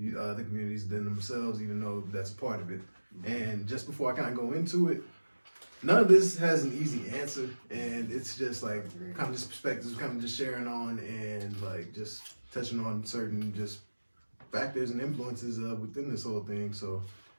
communities than themselves, even though that's a part of it. And just before I kind of go into it, none of this has an easy answer, and it's just like kind of just perspectives, kind of just sharing on and like just touching on certain just factors and influences within this whole thing. So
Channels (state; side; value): inverted; both; correlation -1.00